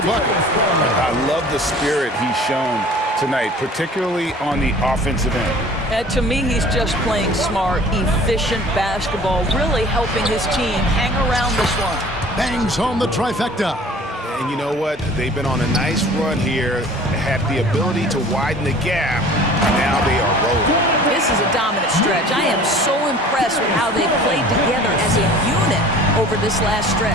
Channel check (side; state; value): both; normal; correlation 0.47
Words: bucket. I love the spirit he's shown tonight, particularly on the offensive end. To me, he's just playing smart, efficient basketball, really helping his team hang around this one. Bangs home the trifecta. And you know what? They've been on a nice run here, had the ability to widen the gap. Now they are rolling. This is a dominant stretch. I am so impressed with how they played together as a unit over this last